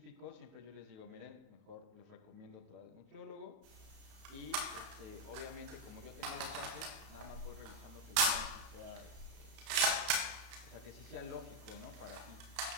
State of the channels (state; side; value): late; left; 31 ms